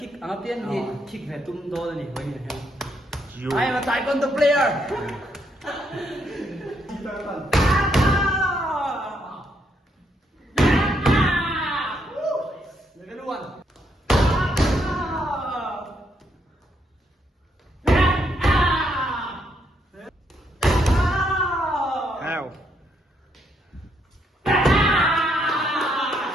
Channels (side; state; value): both; normal; correlation 0.75